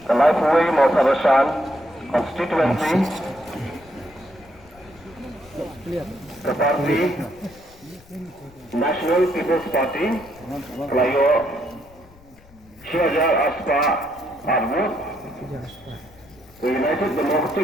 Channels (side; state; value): left; noise; rumble, 26 dB below the sound